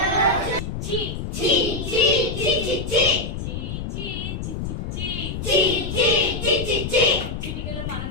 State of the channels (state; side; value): noise; left; rumble, 5 dB below the sound